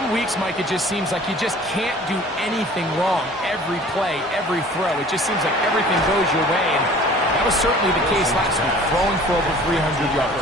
weeks, Mike, it just seems like you just can't do anything wrong. Every play, every throw, it just seems like everything goes your way. And that was certainly the case last week, throwing for over 300 yards,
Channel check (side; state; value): both; normal; correlation 0.48